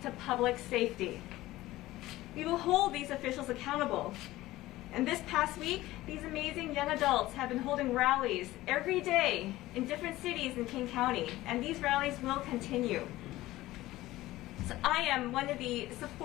to public safety. We will hold these officials accountable. And this past week, these amazing young adults have been holding rallies every day in different cities in King County, and these rallies will continue. So I am one of the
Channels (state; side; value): quieter; right; 17.0 dB